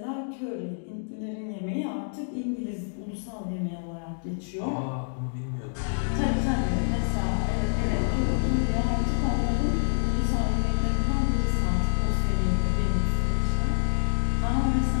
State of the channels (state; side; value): silent; right; digital silence